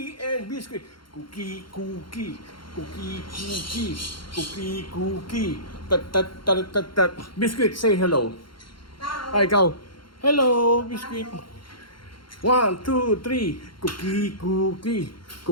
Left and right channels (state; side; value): late; right; 0.73 ms